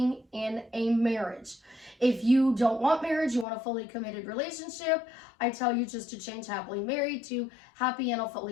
in a marriage. If you don't want marriage, you want a fully committed relationship, I tell you just to change happily married to happy and a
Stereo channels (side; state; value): right; drops out; at 3.5 s